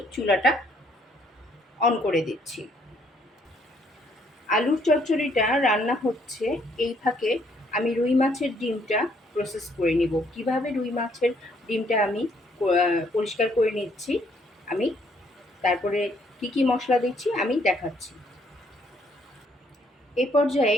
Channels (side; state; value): both; normal; correlation 0.67